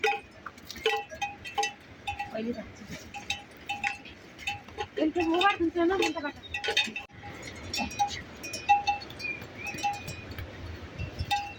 पहले इनके मुंह पर तुमसे ना बनता काटा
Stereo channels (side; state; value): both; identical; correlation 1.00